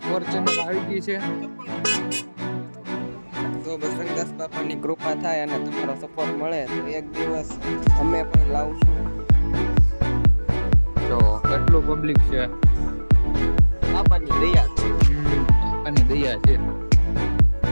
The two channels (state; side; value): inverted; both; correlation -1.00